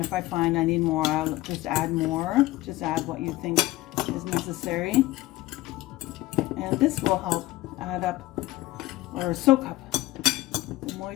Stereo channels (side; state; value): right; quieter; 17.9 dB